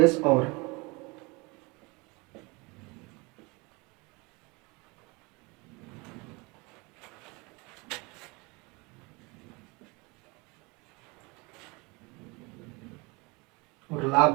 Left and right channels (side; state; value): left; quieter; 26.8 dB